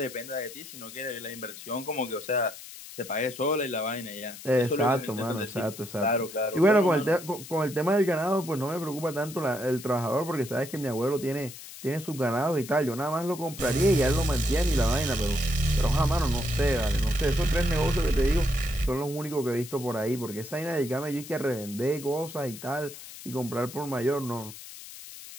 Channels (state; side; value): noise; left; hiss, 14 dB below the sound